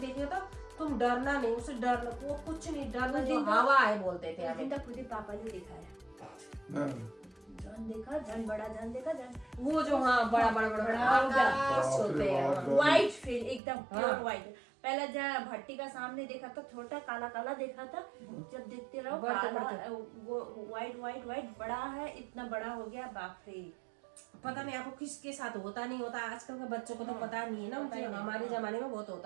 तो तुम डरना नहीं, उसे डरना वो कुछ नहीं, डरना जो हवा है बोलते थे उस हमें। दिन तक खुद ही पापा ने दिखाया, हाँ। जन देखा, जन बड़ा, जन देखा, जन वो जो हाँ बड़ा बड़ा बड़ा बड़ा आकाश बाप रे होते हैं। बाप। व्हाइट फिर एकदम प्योर हाँ। व्हाइट। पहले जब भट्टी का सामने देखा था छोटा काला काला देखा था, जब देखते रहो बढ़ते काला बढ़ते। वो व्हाइट व्हाइट व्हाइट बड़ा है, इतना बड़ा हो गया, बाप रे। पता नहीं आपको किसके साथ होता नहीं होता, आजकल के बच्चों को तो पता नहीं है ना, पता ही नहीं। हमारे जमाने में बहुत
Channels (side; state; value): left; drops out; at 13.6 s